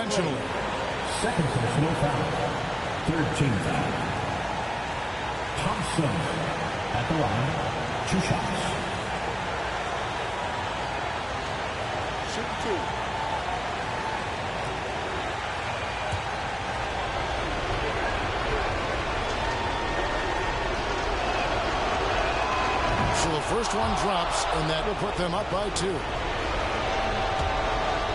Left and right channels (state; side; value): identical; both; correlation 1.00